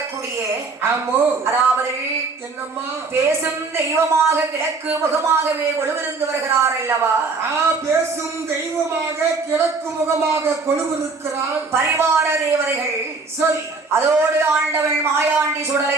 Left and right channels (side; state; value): left; quieter; 4.1 dB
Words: ஆமோ, அதாவது என்னம்மா பேசும் தெய்வமாக கிழக்கு முகமாகவே கொழுவிருந்து வருகிறார் அல்லவா? பேசும் தெய்வமாக கிழக்கு முகமாக கொழுவிருக்கிறார் பரிவார தேவதைகள். சரி, அதோடு ஆண்டவள் மாயாண்டி